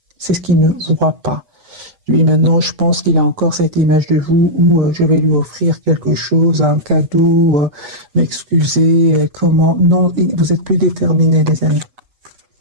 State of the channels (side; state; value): left; late; 8.2 ms